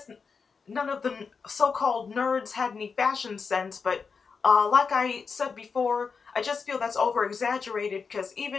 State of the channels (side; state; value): right; quieter; 5.3 dB